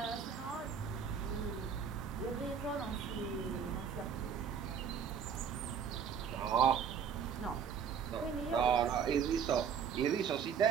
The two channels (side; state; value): left; quieter; 7.2 dB